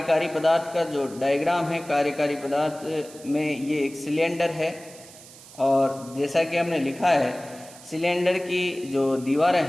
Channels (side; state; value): right; noise; hiss, 19 dB below the sound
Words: पदार्थ का जो डायग्राम है। कार्यकारी पदार्थ में ये एक सिलेंडर है और जैसा कि हमने लिखा है सिलेंडर की जो दीवारें